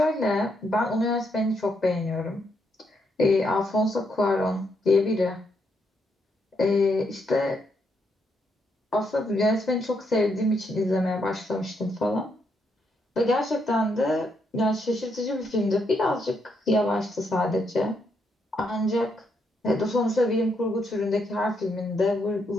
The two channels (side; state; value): both; normal; correlation 0.78